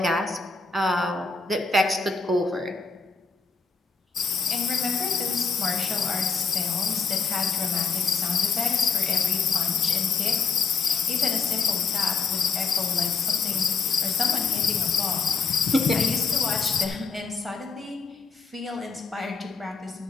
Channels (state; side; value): quieter; right; 5.0 dB